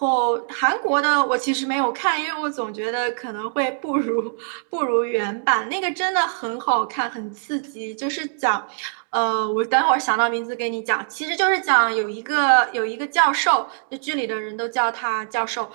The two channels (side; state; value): left; silent; digital silence